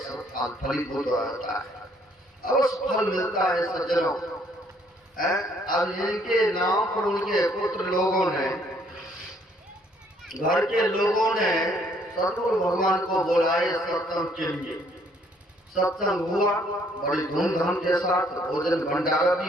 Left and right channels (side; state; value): both; normal; correlation 0.65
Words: फल, फलीभूत होता है, अवश्य फल मिलता है सज्जनों। अब इनके नाम पर उनके पुत्र लोगों ने, घर के लोगों ने सतगुरु भगवान को बुलाए सत्संग के लिए। सत्संग हुआ बड़ी धूमधाम के साथ, भोजन भंडारा